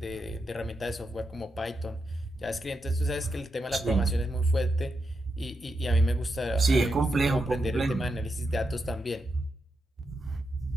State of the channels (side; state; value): both; normal; correlation 0.85